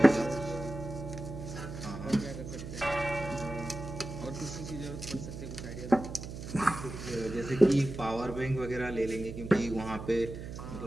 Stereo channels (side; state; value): right; noise; hum, 9 dB below the sound